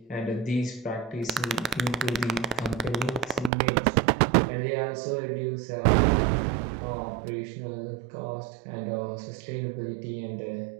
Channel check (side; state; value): left; drops out; at 3.5 s